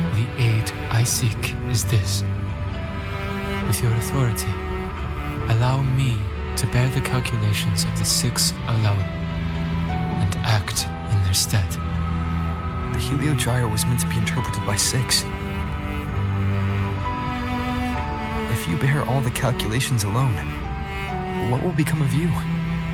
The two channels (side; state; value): both; identical; correlation 1.00